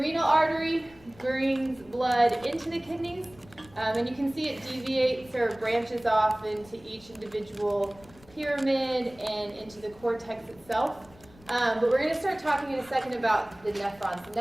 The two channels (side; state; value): left; noise; rumble, 25 dB below the sound